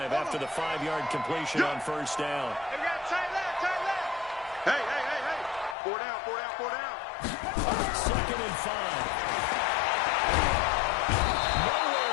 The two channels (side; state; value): right; drops out; at 5.8 s